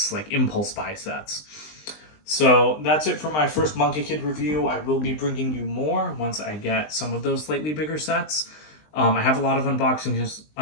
like impulse buy sets. So that's it for my first Monkie Kid review. I will be bringing you more once I get some of those slightly bigger sets. I have a lot of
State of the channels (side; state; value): right; late; 20 ms